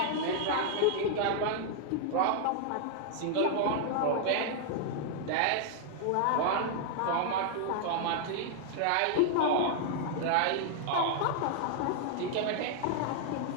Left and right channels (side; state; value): both; different; correlation -0.01